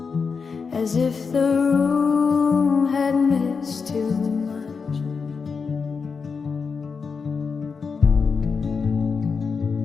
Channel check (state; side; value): quieter; right; 5.3 dB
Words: as if the room had missed too much.